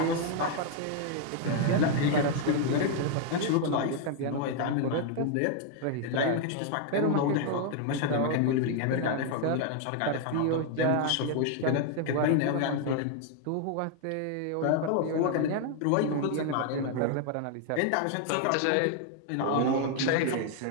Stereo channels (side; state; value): both; different; correlation 0.00